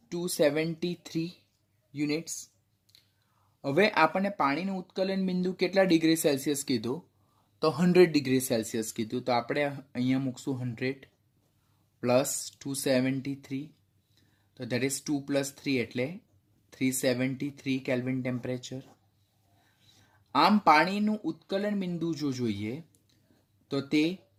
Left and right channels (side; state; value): both; identical; correlation 1.00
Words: 273 units. હવે આપણને પાણીનું ઉત્કલન બિંદુ કેટલા ડિગ્રી સેલ્સિયસ કીધું? તો 100 ડિગ્રી સેલ્સિયસ કીધું. તો આપણે અહીંયા મૂકશું 100 પ્લસ 273 તો દેટ ઇઝ 2 પ્લસ 3 એટલે 373 કેલ્વિન ટેમ્પરેચર. આમ પાણીનું ઉત્કલન બિંદુ જો જોઈએ તો તે